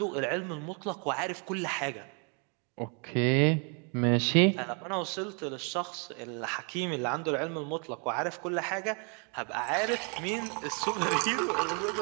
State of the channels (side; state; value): left; quieter; 36.9 dB